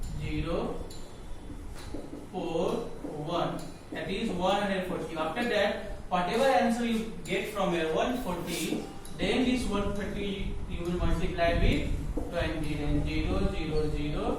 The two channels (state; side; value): identical; both; correlation 1.00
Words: 0 4 1, that is 140. After that, whatever answer you get from here 140, then this 130 you will multiply with 20, then 0 0